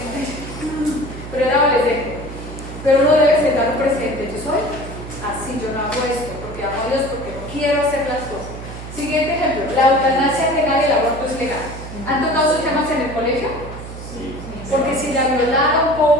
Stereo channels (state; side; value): noise; right; hum, 11 dB below the sound